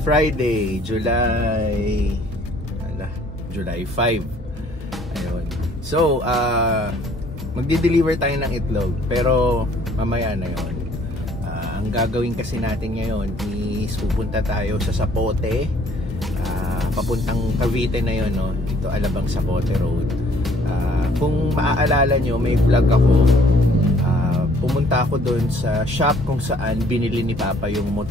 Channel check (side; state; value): both; normal; correlation 0.60